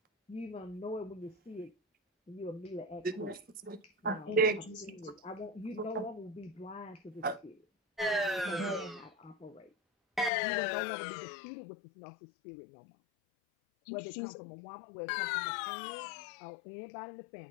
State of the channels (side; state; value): right; drops out; at 10.3 s